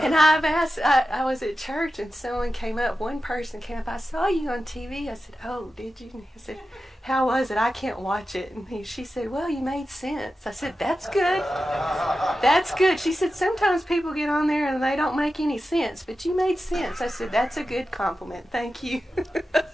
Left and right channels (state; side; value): normal; both; correlation 0.92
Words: I was at church, and one person came up, I saw you on TV. I said, oh, did you? I said, how was it? I can't watch it. And she said, well, you made sense. I said, that's good. That's good. She said, sometimes people get on there and they don't make any sense, but you made sense. I said, that's a good compliment. Thank you.